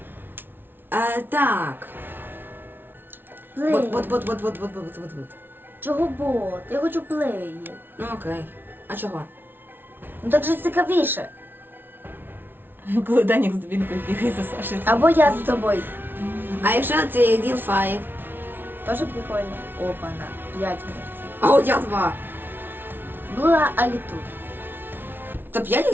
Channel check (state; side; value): late; left; 0.10 ms